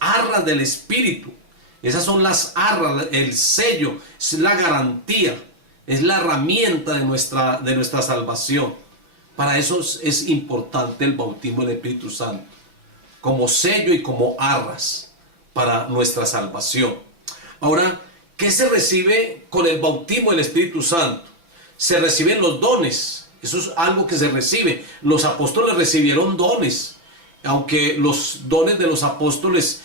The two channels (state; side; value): late; left; 5.9 ms